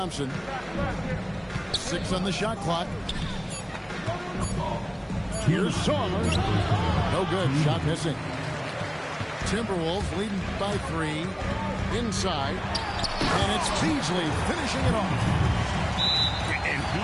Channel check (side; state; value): both; identical; correlation 1.00